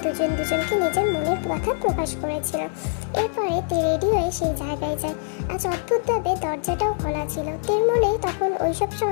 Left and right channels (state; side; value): silent; right; digital silence